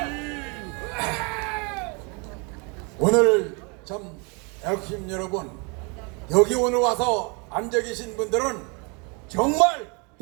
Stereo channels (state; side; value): quieter; left; 32.4 dB